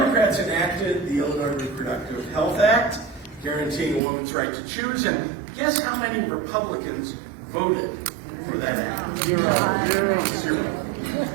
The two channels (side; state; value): left; drops out; at 4.0 s